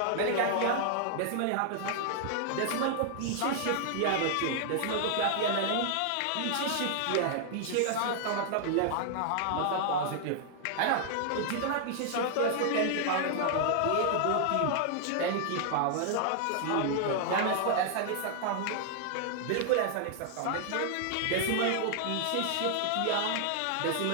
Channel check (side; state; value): both; different; correlation 0.00